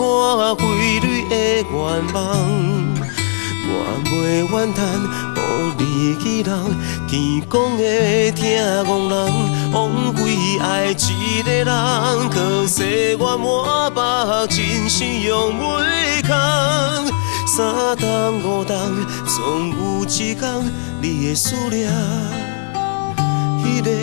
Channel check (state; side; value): silent; right; digital silence